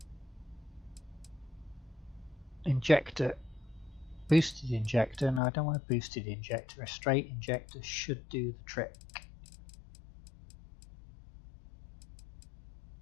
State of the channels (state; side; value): drops out; right; at 5.4 s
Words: Injector. Boosted injector. No, I don't want a boosted injector. A straight injector should do the trick.